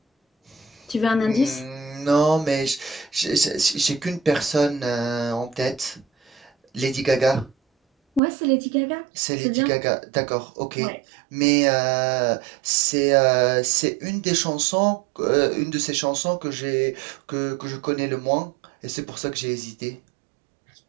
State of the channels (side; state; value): left; drops out; at 8.2 s